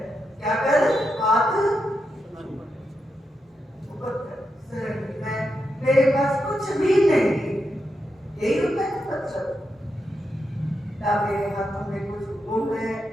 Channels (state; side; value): normal; both; correlation 0.85